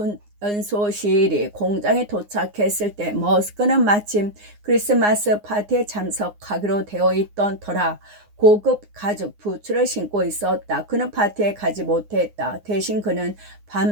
공장에 도착했을 때 머스크는 마침 크리스마스 파티에 참석하기로 되어 있던 터라 고급 가죽 부츠를 신고 있었다. 그는 파티에 가지 못했다. 대신 그는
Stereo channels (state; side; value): late; left; 9.7 ms